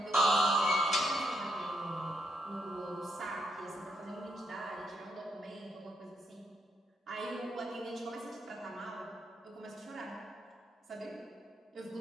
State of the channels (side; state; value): both; normal; correlation 0.77